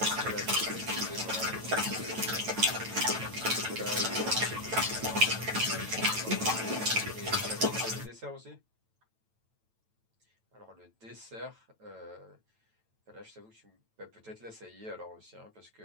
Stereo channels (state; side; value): late; left; 9.0 ms